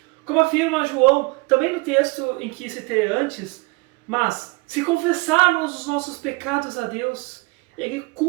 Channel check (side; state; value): left; quieter; 26.5 dB